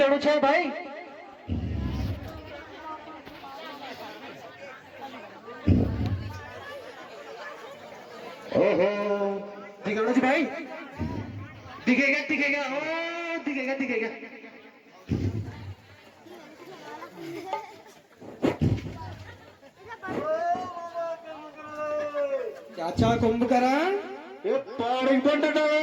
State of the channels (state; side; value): identical; both; correlation 1.00